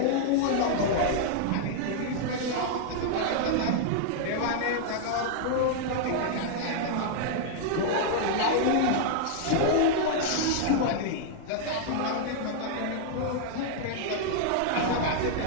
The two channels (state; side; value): different; both; correlation -0.01